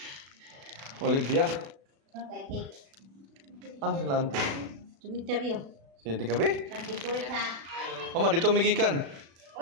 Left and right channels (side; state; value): left; late; 36 ms